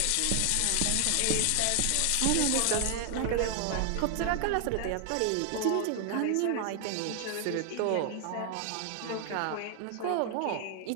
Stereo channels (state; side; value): different; both; correlation 0.00